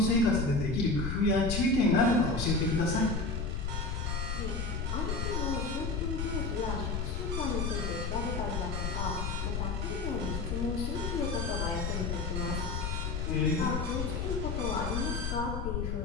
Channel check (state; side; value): noise; left; rumble, 1 dB below the sound